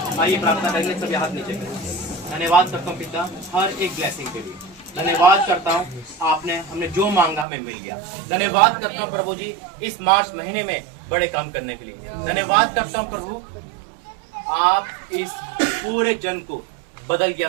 आइए प्रार्थना करेंगे, सभी हाथ नीचे करें। धन्यवाद करता हूँ पिता हर एक ब्लेसिंग के लिए, धन्यवाद करता हूँ आपने हमने जो मांगा हमें मिल गया। धन्यवाद करता हूँ प्रभु जी इस मार्च महीने में बड़े काम करने के लिए। धन्यवाद करता हूँ प्रभु आप इस पूरे जन को बदल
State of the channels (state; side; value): drops out; left; at 7.5 s